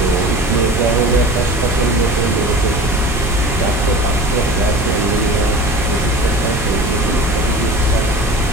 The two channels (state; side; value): normal; both; correlation 0.37